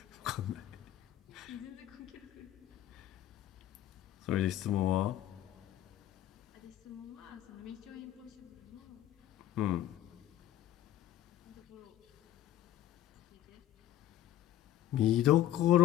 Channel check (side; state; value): right; quieter; 12.6 dB